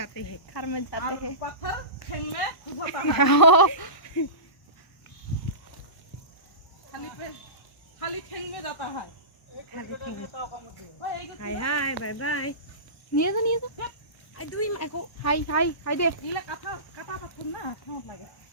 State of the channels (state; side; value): late; right; 1.1 ms